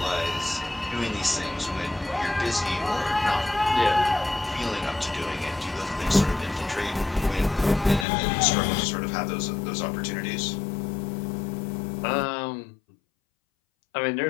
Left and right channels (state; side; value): drops out; right; at 8.1 s